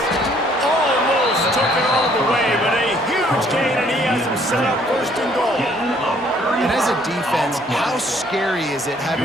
Almost took it all the way, but a huge gain, and he has him set up 1st and goal. And as a defense, how scary is it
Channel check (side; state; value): both; normal; correlation 0.63